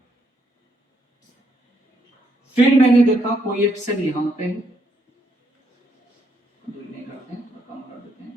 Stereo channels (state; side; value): normal; both; correlation 0.74